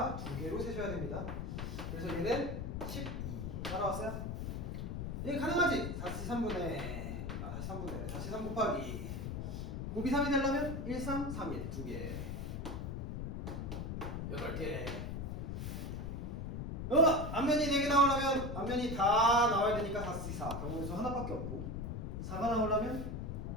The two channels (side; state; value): left; noise; rumble, 4 dB below the sound